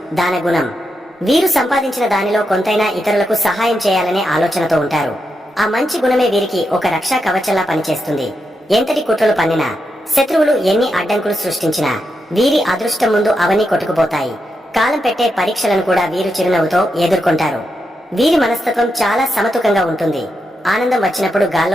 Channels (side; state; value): both; normal; correlation 0.85